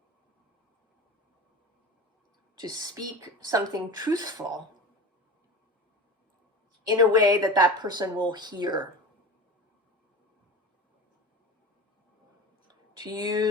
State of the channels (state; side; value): normal; both; correlation 0.30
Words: To speak something truthful in a way that that person will hear to